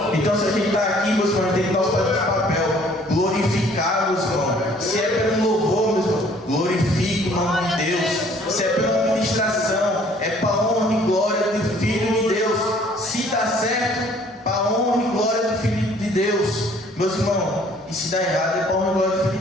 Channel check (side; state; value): both; normal; correlation 0.58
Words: Então, se a gente está aqui, meus irmãos, a gente tem que fazer esse papel, glorificar, meus irmãos. Se é pelo louvor, meus irmãos, glorifique o nome de Deus. Se é pela ministração, é para a honra e glória do Filho de Deus. Se dá certo, para a honra e glória do Filho de Deus, meus irmãos. E se dá errado, é para a honra e glória do Filho